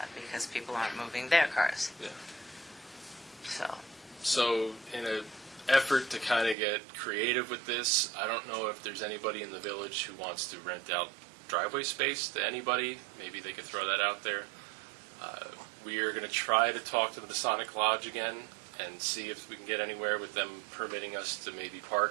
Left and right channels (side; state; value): left; drops out; at 6.6 s